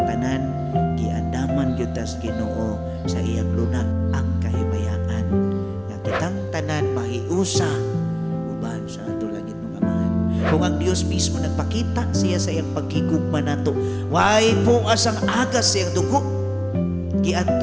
giandaman gyud tas Ginoo sa iyang lunag ang kahimayaan. Nga kitang tanan mahiusa uban sa ato langit ng Amahan. Kung ang Dios mismo nagpakita siya sa iyang paghigugma nato, way po asang agas sa iyang dugo.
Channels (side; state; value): left; noise; hum, 28 dB below the sound